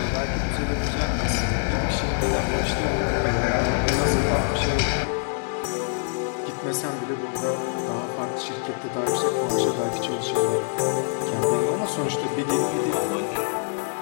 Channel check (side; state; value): right; silent; 62 dB below the other